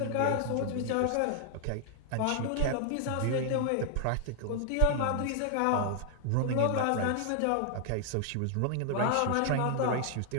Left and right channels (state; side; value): different; both; correlation 0.00